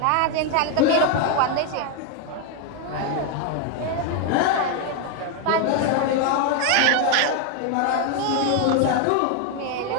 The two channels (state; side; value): different; both; correlation 0.01